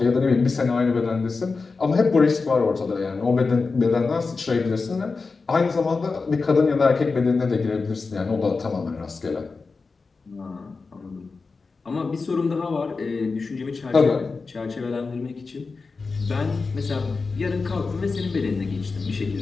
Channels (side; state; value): right; quieter; 4.3 dB